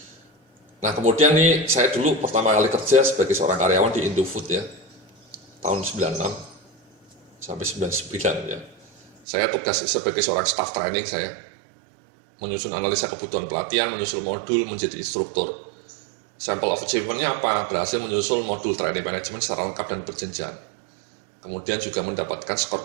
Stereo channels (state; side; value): drops out; left; at 9.1 s